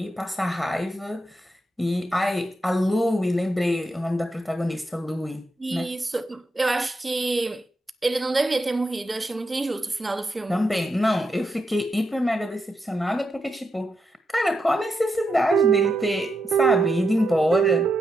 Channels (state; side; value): normal; both; correlation 0.84